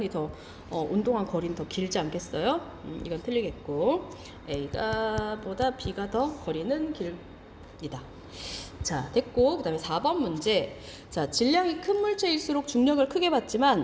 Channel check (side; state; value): both; identical; correlation 1.00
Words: 더 운동한 거리는 더 길지 않겠어요? 이건 틀리겠고 A가 보다 B가 더 거리는 길이다. 자, 됐고 그 다음에 4번 문제. 자, 질량이 큰 물체일수록 중력을 크게